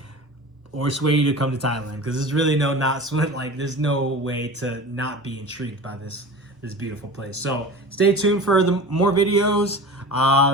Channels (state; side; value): normal; both; correlation 0.35